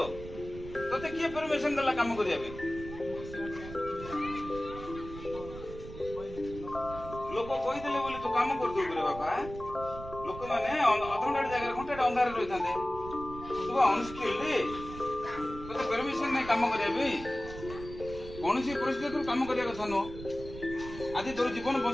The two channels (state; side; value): noise; right; rumble, 12 dB below the sound